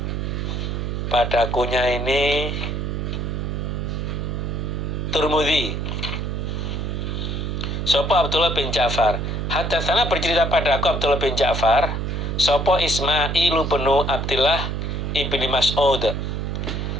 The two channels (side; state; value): right; noise; hum, 2 dB below the sound